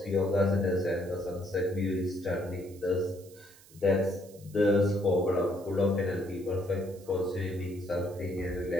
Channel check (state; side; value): noise; right; hiss, 24 dB below the sound